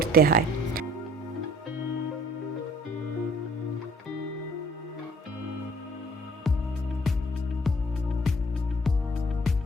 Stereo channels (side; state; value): both; normal; correlation 0.56